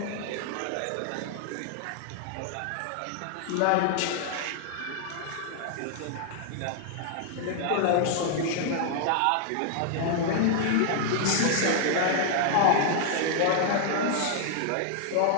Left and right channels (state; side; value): different; both; correlation 0.00